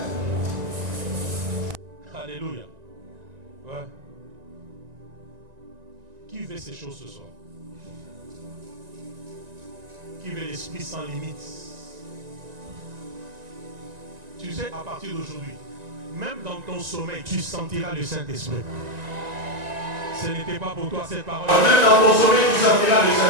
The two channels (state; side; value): late; left; 1.9 ms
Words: alléluia. Ouais. Qui veut ces choses ce soir? Qui veut l'esprit sans limite? Tu sais, à partir d'aujourd'hui, même dans ton sommeil, tu sentiras le Saint-Esprit. Ce n'était pas pour toi cette parole. Même dans ton sommeil, tu sentiras le